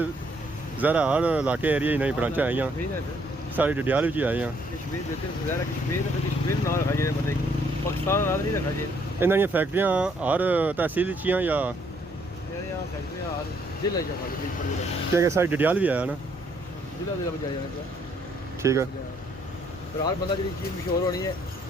ज़रा हर इलाके एरिया ही नहीं ब्रांचा आई सारी डडियाल भी आई हैं इन्होंने फैक्ट्रियां हर तहसील या क्या सारी डडियाल भी आया ना ठीक है हर बंदा जी चीज़ मशहूर होनी है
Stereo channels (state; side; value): normal; both; correlation 0.68